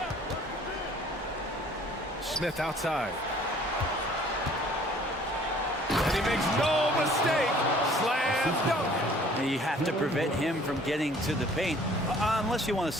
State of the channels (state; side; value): normal; both; correlation 0.55